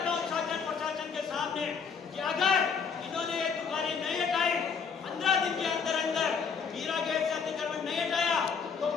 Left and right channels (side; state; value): right; quieter; 6.0 dB